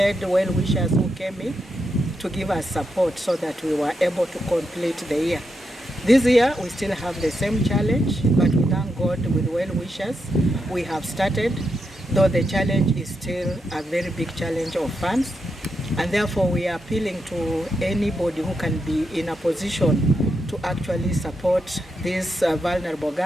well-wishers who came in to give us support so that we were able to complete the year. This year, we still have the same challenge, but we thank God with well-wishers. We have started, though the challenge is still a very big challenge of funds, and therefore we are appealing to anybody who can be in a position to actually support these vulnerable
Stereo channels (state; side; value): normal; both; correlation 0.84